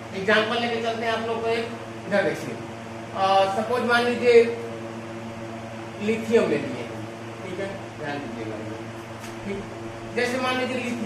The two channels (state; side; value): identical; both; correlation 1.00